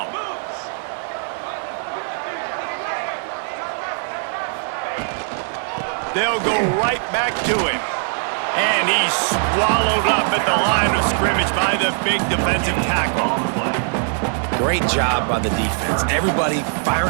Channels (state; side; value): silent; left; digital silence